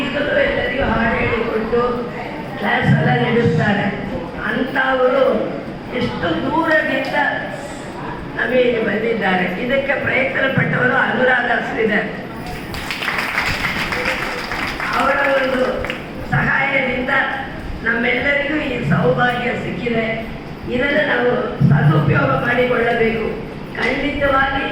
ಎಲ್ಲರಿಗೂ ಹಾಡು ಹೇಳಿಕೊಟ್ಟು ಕ್ಲಾಸ್ ಎಲ್ಲ ನಡೆಸ್ತಾರೆ. ಅಂಥವರು ಎಷ್ಟು ದೂರದಿಂದ ನಮಗೆ ಬಂದಿದ್ದಾರೆ. ಇದಕ್ಕೆ ಪ್ರಯತ್ನ ಪಟ್ಟವರು ಅನುರಾಧ ಶ್ರೀಧರ್ ಅವರ ಒಂದು ಸಹಾಯದಿಂದ ನಮ್ಮೆಲ್ಲರಿಗೂ ಈ ಸೌಭಾಗ್ಯ ಸಿಕ್ಕಿದೆ. ಇದನ್ನು ನಾವು ಸದುಪಯೋಗ ಮಾಡಿಕೊಳ್ಳಬೇಕು. ಖಂಡಿತವಾಗಿ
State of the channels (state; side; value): identical; both; correlation 1.00